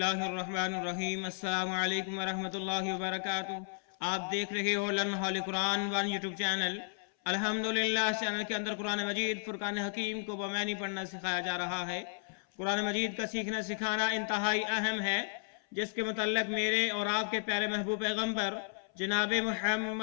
الرحمن الرحیم۔ السلام علیکم ورحمۃ اللہ وبرکاتہ۔ آپ دیکھ رہے ہو لرن ہال قرآن ون یوٹیوب چینل۔ الحمدللہ اس چینل کے اندر قرآن مجید فرقان حکیم کو بمعنی پڑھنا سکھایا جا رہا ہے۔ قرآن مجید کا سیکھنا سکھانا انتہائی اہم ہے، جس کے متعلق میرے اور آپ کے پیارے محبوب پیغمبر جناب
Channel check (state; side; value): silent; right; 55 dB below the other